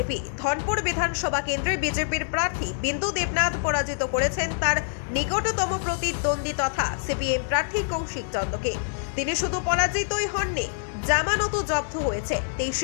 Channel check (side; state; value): right; silent; digital silence